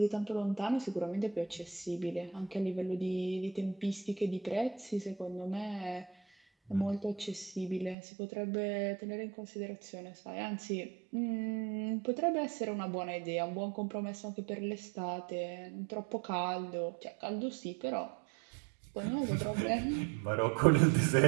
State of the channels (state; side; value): drops out; left; at 8.0 s